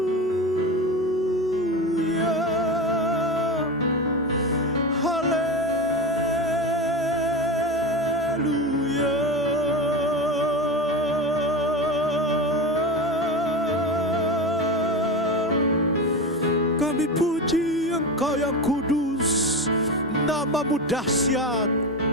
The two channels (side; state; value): both; normal; correlation 0.22